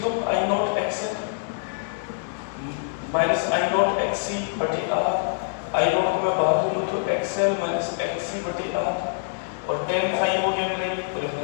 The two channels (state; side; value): silent; right; digital silence